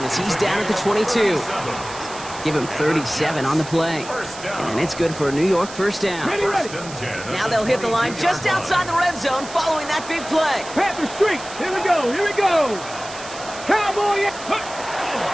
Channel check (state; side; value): noise; right; hiss, 14 dB below the sound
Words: as he's down at the 22. Give him 37 on the play. And it's good for a New York first down. Ready. Now they'll hit the line just outside the red zone following that big play. Panther streak. Here we go. Cowboy.